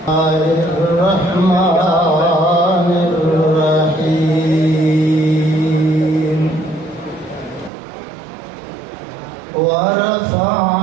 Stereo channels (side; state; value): left; drops out; at 7.7 s